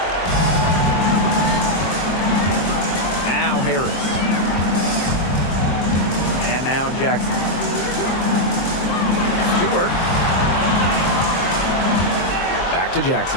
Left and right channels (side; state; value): right; late; 23 ms